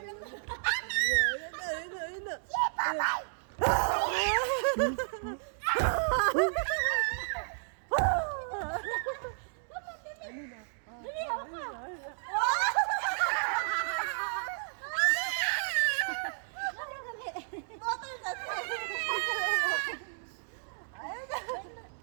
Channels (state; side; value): silent; left; digital silence